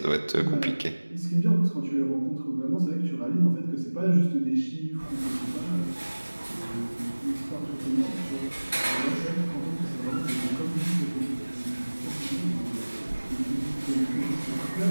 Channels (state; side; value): inverted; both; correlation -1.00